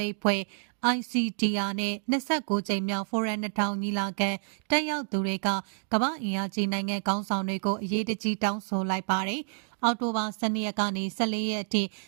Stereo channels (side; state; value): left; silent; digital silence